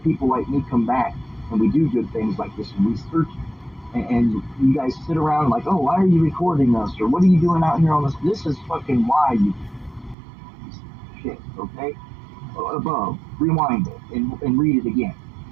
like me come back and we do good things like this and research and you guys sit around like, oh, why are you recording us? Or what are you doing out here on this? This is fucking why you shit, okay? Above, rewind it and read it again.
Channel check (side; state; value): left; drops out; at 10.2 s